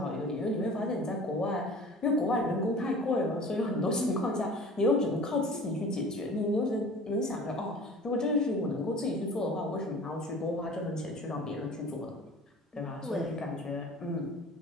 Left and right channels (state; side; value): normal; both; correlation 0.43